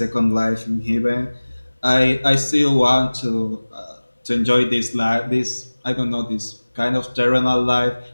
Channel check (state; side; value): inverted; both; correlation -1.00